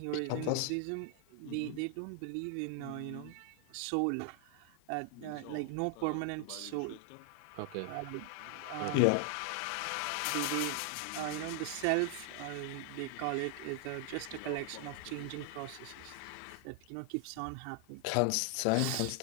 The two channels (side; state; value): both; different; correlation 0.00